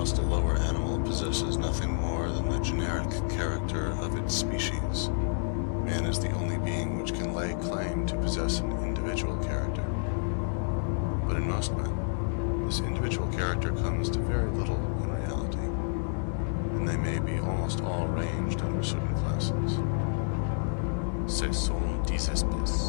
a lower animal possesses nothing more than the generic character of its species, man is the only being which can lay claim to possess an individual character. But in most men, this individual character comes to very little in reality, and they may be almost all ranged under certain classes.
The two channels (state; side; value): silent; right; 58 dB below the other